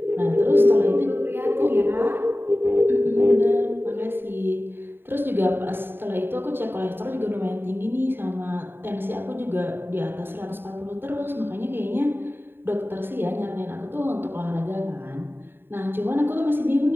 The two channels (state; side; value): late; left; 0.10 ms